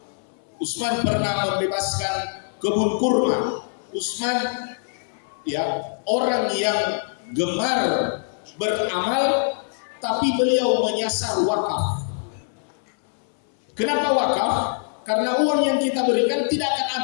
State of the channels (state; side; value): silent; right; 63 dB below the other